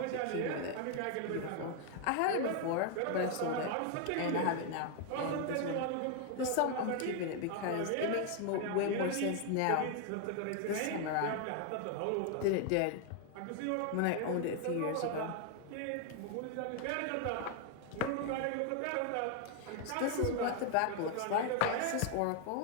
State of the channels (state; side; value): different; both; correlation 0.00